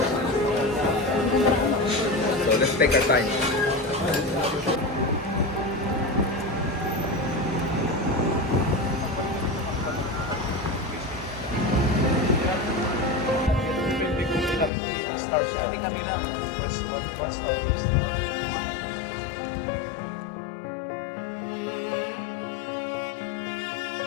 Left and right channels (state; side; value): drops out; right; at 14.7 s